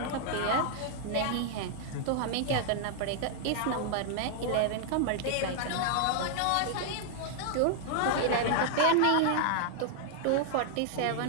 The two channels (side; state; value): both; different; correlation -0.01